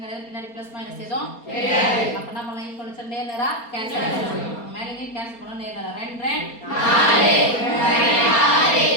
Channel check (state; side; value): late; right; 4.3 ms